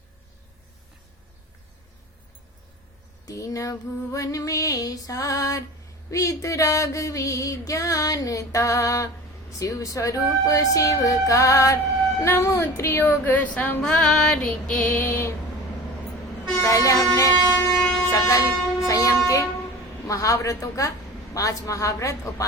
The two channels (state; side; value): normal; both; correlation 0.37